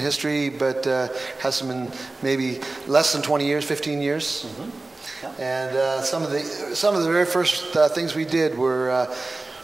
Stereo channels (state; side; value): quieter; left; 3.2 dB